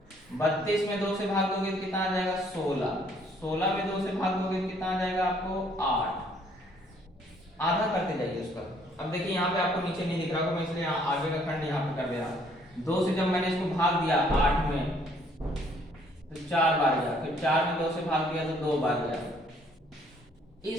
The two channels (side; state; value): both; normal; correlation 0.63